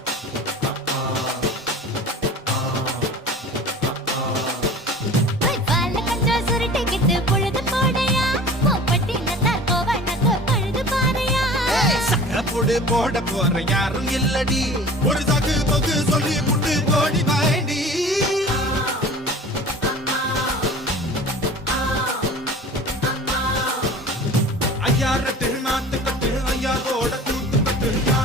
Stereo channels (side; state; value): both; normal; correlation 0.42